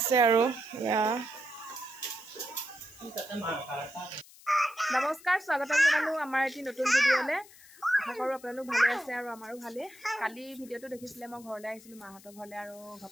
আৰু নমস্কাৰ স্বাগতম জনালোঁ আমাৰ এটি নতুন ভিডিঅ'লৈ আশা কৰোঁ আপোনালোক ভালে আছে আৰু আমাৰো ভালেই কালি ভিডিঅ'টো দেখিছিলে মই ঘৰলৈ আহিছিলোঁ মাহঁতৰ ঘৰলৈ আৰু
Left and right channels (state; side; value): noise; left; hiss, 22 dB below the sound